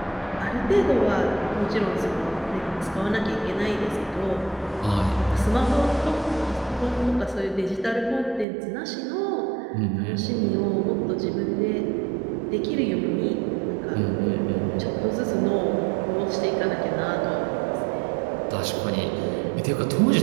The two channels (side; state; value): left; drops out; at 8.5 s